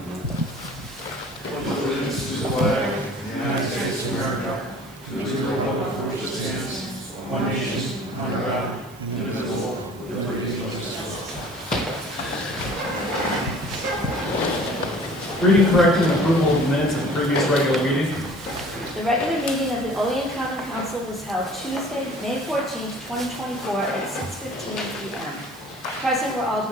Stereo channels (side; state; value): right; noise; hiss, 23 dB below the sound